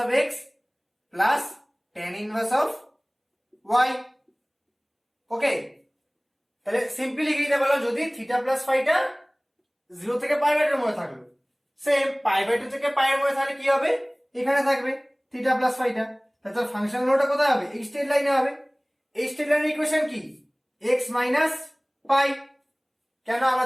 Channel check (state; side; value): identical; both; correlation 1.00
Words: of x plus tan inverse of y। Okay, তাহলে সিম্পলি লিখে দিতে পারলাম যদি থিটা প্লাস ফাইটা 0 থেকে π/2 এর মধ্যে থাকলো, সেম π/2 থেকে পাই এর মধ্যে তাহলে কি হবে, এখানে থাকবে থিটা প্লাস ফাইটা। তাহলে ফাংশন লোটা কোথায় হবে, এই স্ট্রেট লাইনে হবে। এই স্ট্রেট লাইনের ইকুয়েশন কি x মাইনাস পাই। কেন আমরা